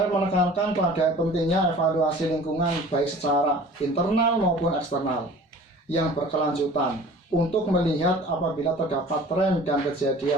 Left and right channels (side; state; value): both; normal; correlation 0.45